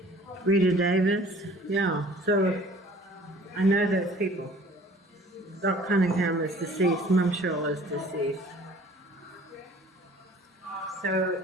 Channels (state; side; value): normal; both; correlation 0.51